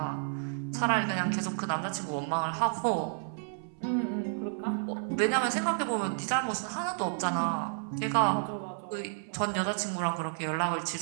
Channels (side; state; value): left; silent; 57 dB below the other